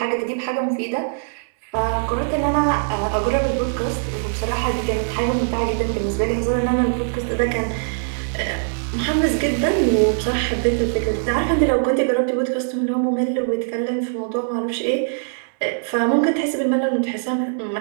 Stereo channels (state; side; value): silent; left; 61 dB below the other